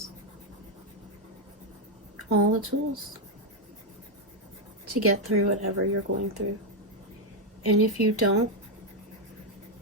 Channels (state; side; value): normal; both; correlation 0.02